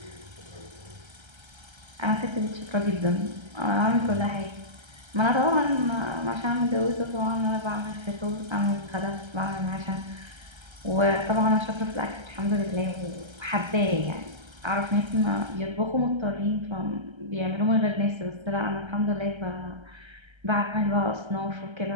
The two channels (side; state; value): left; late; 1.3 ms